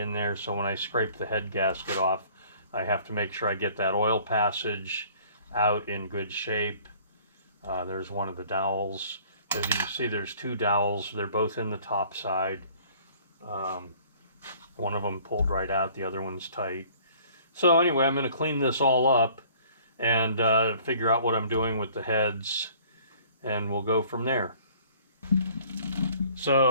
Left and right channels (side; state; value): both; inverted; correlation -0.54